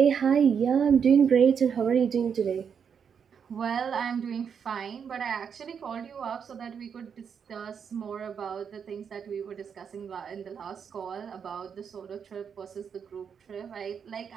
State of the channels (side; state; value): left; quieter; 7.1 dB